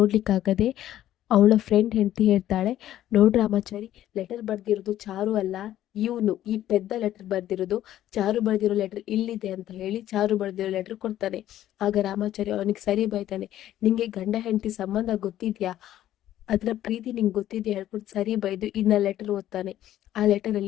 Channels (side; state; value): right; quieter; 12.6 dB